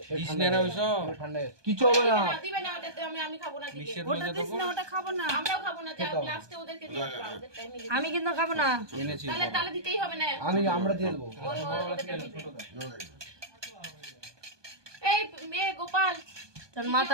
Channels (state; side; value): late; left; 1.2 ms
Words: ঠান্ডা কিছু হবে না। দিবে না ওটাতে, আমি খাবো না দিবে। ওটা দিস না, ওটা খাবো না। আমরাও খাবো না, যা লাস্টে ওদেরকে দিয়ে দাও, ওদের টাইমে দিয়ে দাও। আমি কিন্তু খাবো না। তাহলে তাহলে দিতেই হবে না। আমরা দিয়ে দেবো। এই মেয়ে গোপাল, তোর